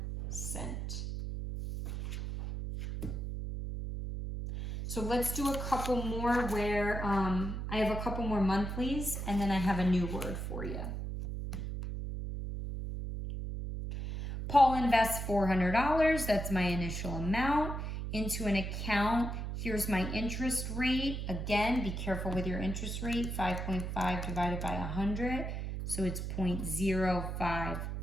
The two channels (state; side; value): noise; right; hum, 4 dB below the sound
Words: So let's do a couple more where I have a couple more monthlies and then I have a new word for you. Paul invests $400, that's my initial amount, into an account. Here's my interest rate. Again, be careful with your interest rate, 5.5 divided by 100, so it's